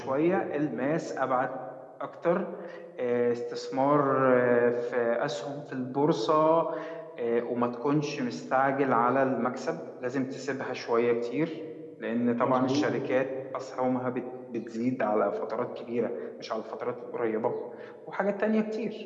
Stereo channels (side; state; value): both; identical; correlation 1.00